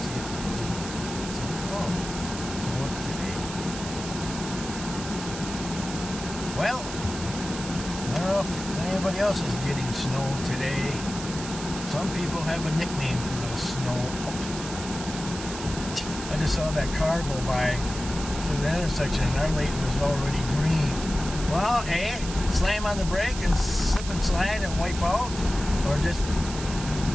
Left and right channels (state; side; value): noise; right; hiss, 10 dB below the sound